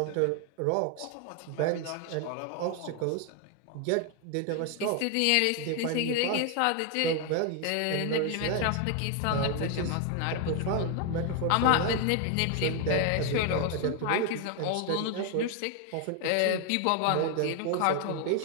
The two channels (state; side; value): different; both; correlation 0.01